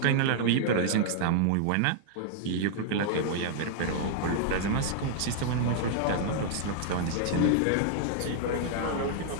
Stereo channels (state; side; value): different; both; correlation -0.01